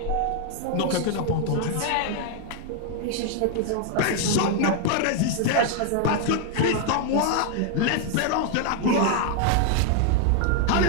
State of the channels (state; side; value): different; both; correlation 0.01